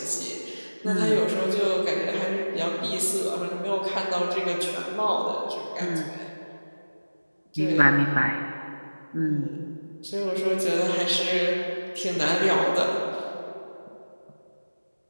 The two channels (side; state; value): both; inverted; correlation -1.00